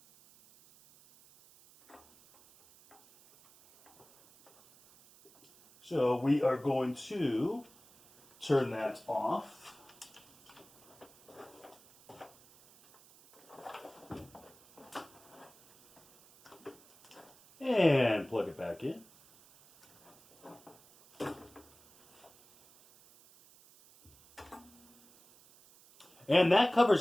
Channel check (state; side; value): noise; right; hiss, 26 dB below the sound